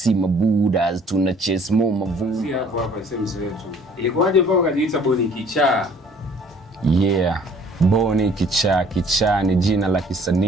mabudas, tuna chase mo mavu. Si hapa sehemu yetu. Ilikuwaje mpaka ukajiita Boni Kichaa? Yeah, Boni Kichaa. Kichaa ni jina la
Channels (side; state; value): both; normal; correlation 0.55